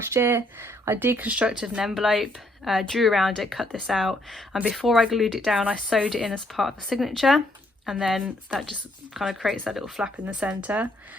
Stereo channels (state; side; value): normal; both; correlation 0.70